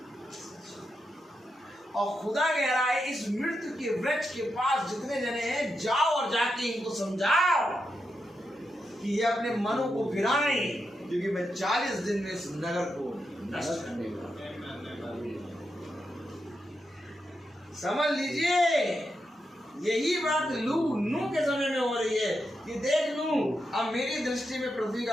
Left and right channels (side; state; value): both; normal; correlation 0.86